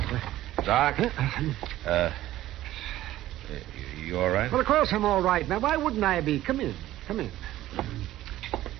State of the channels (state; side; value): quieter; left; 14.6 dB